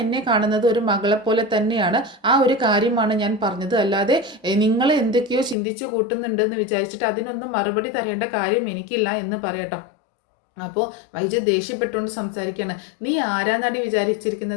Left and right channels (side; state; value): right; drops out; at 5.6 s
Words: എന്നെ കാണുന്നത് ഒരു മകളെ പോലെ തന്നെയാണ്, ആ ഒരു കാര്യമാണ് ഞാൻ പറഞ്ഞത്, അല്ലാതെ നിങ്ങൾ എന്തൊക്കെയോ ചിന്തിച്ചു കൂട്ടുന്നുണ്ടെന്ന് വിചാരിച്ചിട്ട് അതിനൊന്നും മറുപടി തരേണ്ട കാര്യം എനിക്കില്ല എന്ന് പറയട്ടോ. അപ്പോൾ വൈജ ദേഷ്യപ്പെട്ടുകൊണ്ട് സംസാരിക്കുകയാണ്, നീ ആരാന്നാടി